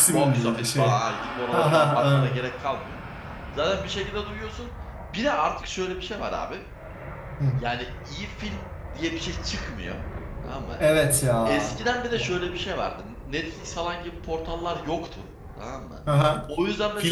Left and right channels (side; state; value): both; identical; correlation 1.00